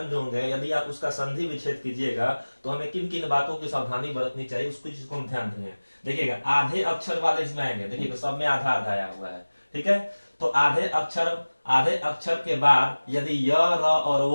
जो होंगे यदि आप उसका संधि विच्छेद कीजिएगा तो हमें किन किन बातों की सावधानी बरतनी चाहिए उसको चीज हम ध्यान देंगे। देखिएगा आधे अक्षर वाले इसमें आएंगे, देखिएगा सब में आधा आधा आया हुआ है, ठीक है। तो आधे अक्षर के बाद यदि य, र और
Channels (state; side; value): inverted; both; correlation -1.00